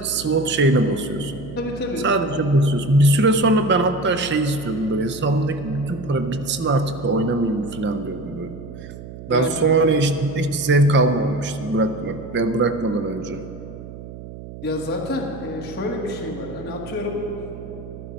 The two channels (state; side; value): noise; right; hum, 13 dB below the sound